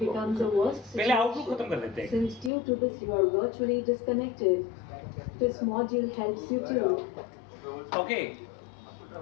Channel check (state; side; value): drops out; right; at 2.5 s